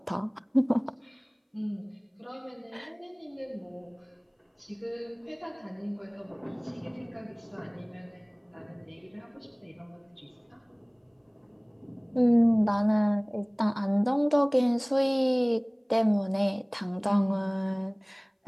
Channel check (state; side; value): identical; both; correlation 1.00